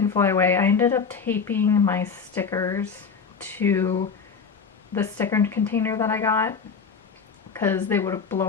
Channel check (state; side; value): quieter; right; 5.7 dB